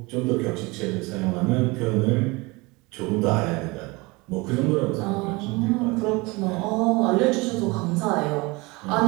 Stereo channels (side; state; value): left; quieter; 24.7 dB